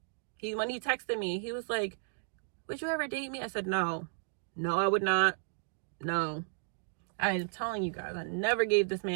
When he texted me, he was like, would you ever date me? I said, no. No, I would not. No. I'm telling you guys, I never gave this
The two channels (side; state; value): left; silent; digital silence